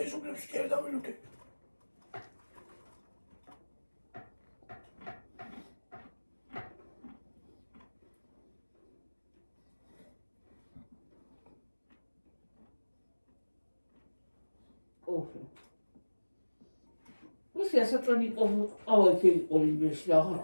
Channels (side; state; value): both; inverted; correlation -1.00